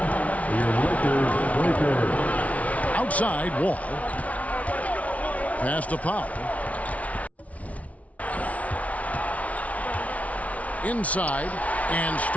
Your Lakers. Outside, Wall. Pass to Powell. Inside, and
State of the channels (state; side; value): late; right; 0.067 ms